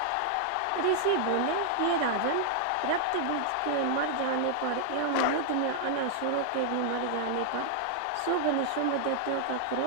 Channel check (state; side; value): different; both; correlation -0.01